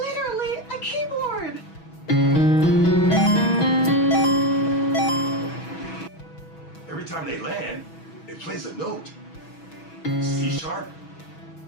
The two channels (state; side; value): late; right; 6.2 ms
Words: a keyboard. Every time they land, it plays a note. C#,